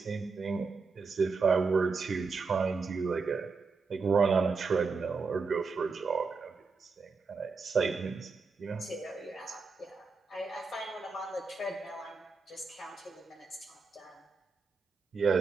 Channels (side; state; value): left; quieter; 4.6 dB